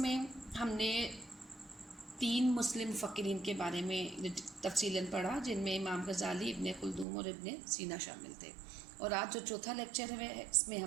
ہم نے 3 مسلم مفکرین کے بارے میں تفصیلاً پڑھا، جن میں امام غزالی، ابن خلدون اور ابن سینا شامل تھے، اور آج جو چوتھا لیکچر ہے اس میں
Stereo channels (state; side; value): drops out; left; at 7.1 s